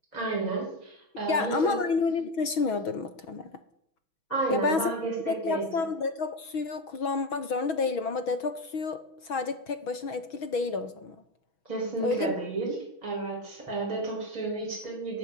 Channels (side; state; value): right; late; 6.2 ms